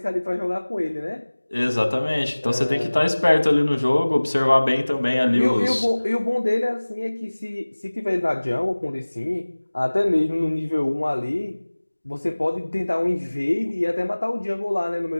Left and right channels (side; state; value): both; inverted; correlation -1.00